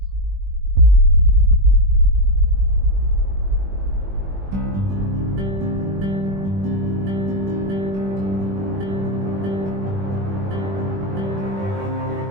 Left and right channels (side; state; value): left; late; 21 ms